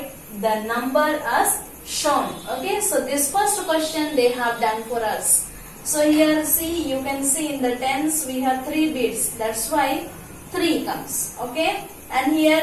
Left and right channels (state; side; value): identical; both; correlation 1.00